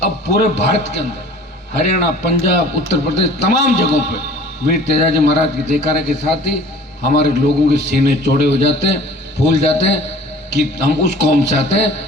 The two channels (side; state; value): both; normal; correlation 0.47